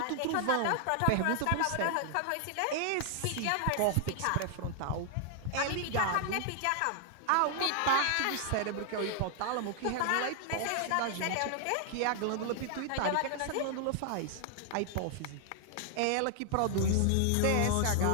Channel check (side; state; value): both; different; correlation 0.00